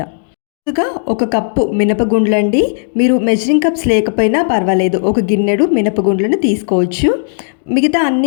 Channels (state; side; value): silent; right; digital silence